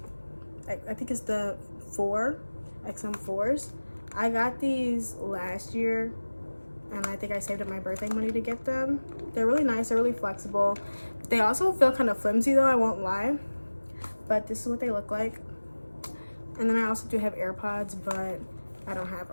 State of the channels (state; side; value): inverted; both; correlation -1.00